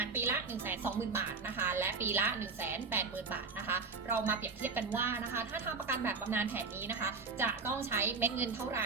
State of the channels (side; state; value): left; quieter; 4.5 dB